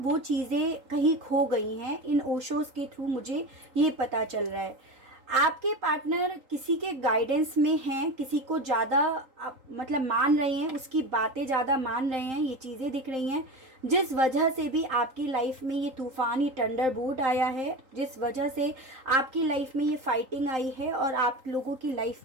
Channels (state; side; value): late; left; 3.8 ms